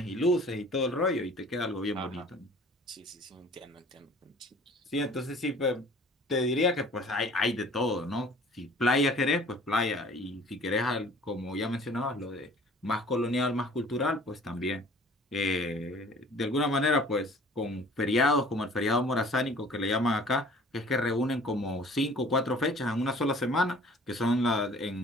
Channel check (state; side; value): normal; both; correlation 0.50